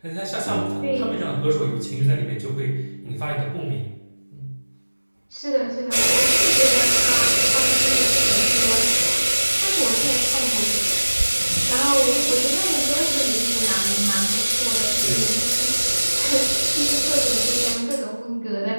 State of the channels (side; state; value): both; inverted; correlation -1.00